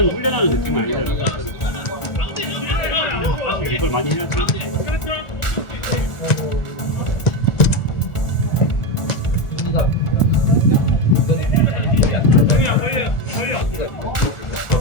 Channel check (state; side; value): late; right; 1.4 ms